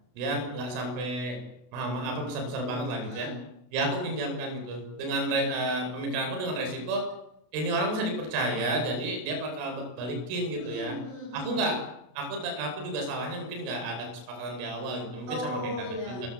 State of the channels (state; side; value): late; left; 32 ms